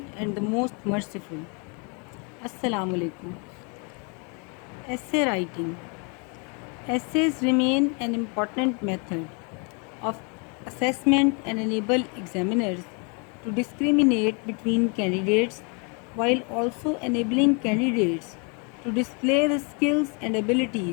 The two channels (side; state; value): right; quieter; 34.9 dB